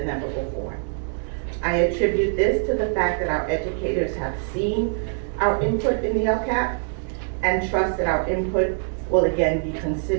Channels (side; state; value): left; silent; digital silence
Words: ever before. I attribute this to the fact that our educators have seen our input in the LCAP and trust that our input will again be